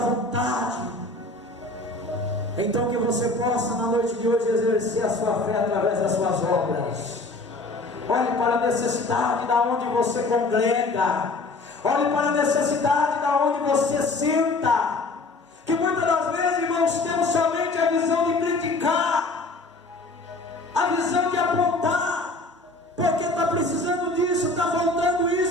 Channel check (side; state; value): right; quieter; 3.1 dB